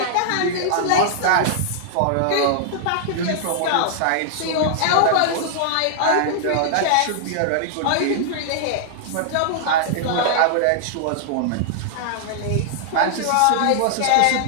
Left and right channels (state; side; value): different; both; correlation -0.01